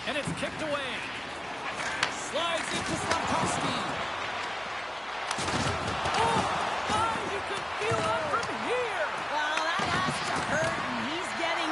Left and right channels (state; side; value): noise; left; hum, 27 dB below the sound